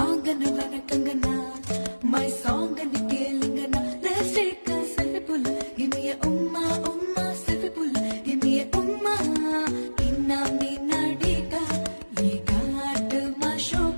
வாங்கன்னு வணக்கங்கண்ணா my சாங்கன்னு கேளுங்கண்ணா let's take a selfie pull give me a umma umma selfie pull give me a umma inna minadika we got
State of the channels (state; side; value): inverted; both; correlation -1.00